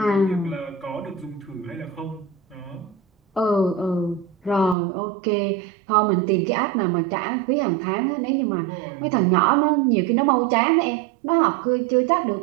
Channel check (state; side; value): drops out; left; at 4.8 s